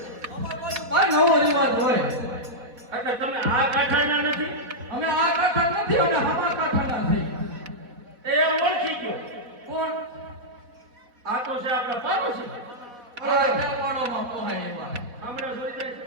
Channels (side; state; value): left; late; 4.1 ms